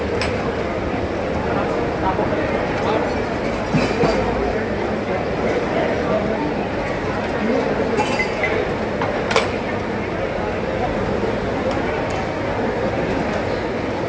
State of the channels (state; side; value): identical; both; correlation 1.00